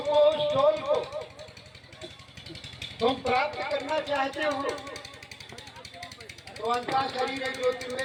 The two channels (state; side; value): identical; both; correlation 1.00